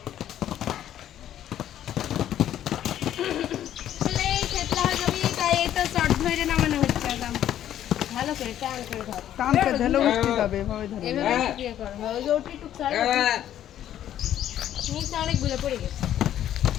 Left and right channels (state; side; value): quieter; right; 11.3 dB